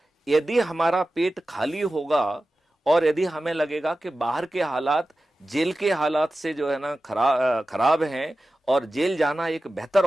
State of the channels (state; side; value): normal; both; correlation 0.94